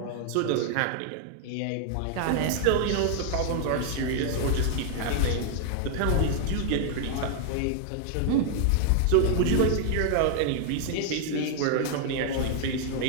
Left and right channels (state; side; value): different; both; correlation 0.00